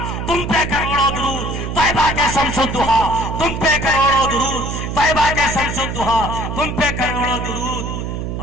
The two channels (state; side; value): noise; right; hum, 4 dB below the sound